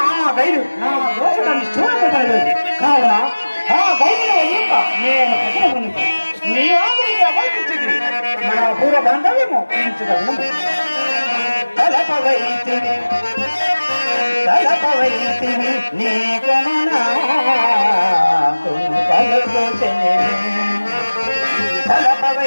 ఆ గైడు నా దోషాన్ని చూడబడలేదు కావున ఆ గైడులో యొక్క నేను పట్టణమునికి నీ ఆదరికి అభయించింది మన పూర్వ బాంధవ్యము పెంచుగలను తలపవైతిని నీ కొననా కలుగుచనే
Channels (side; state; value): both; inverted; correlation -1.00